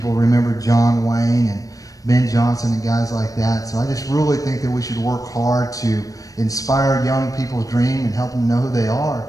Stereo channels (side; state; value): right; late; 0.17 ms